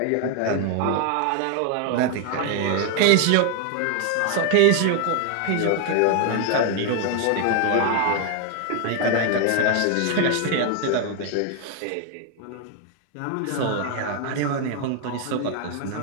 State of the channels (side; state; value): both; different; correlation 0.01